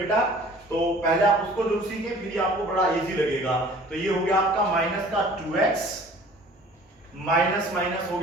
तो पहले आप उसको जरूर सीखें, फिर आपको बड़ा इजी लगेगा। तो ये हो गया आपका माइनस का 2x, माइनस माइनस हो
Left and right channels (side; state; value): both; normal; correlation 0.49